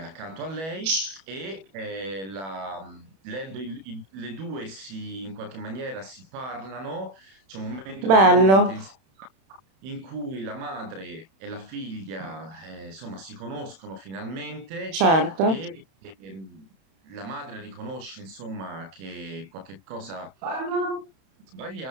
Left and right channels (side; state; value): left; late; 31 ms